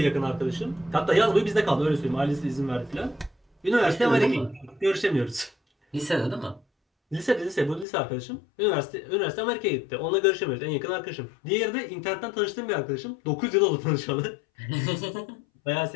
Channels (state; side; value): drops out; right; at 7.9 s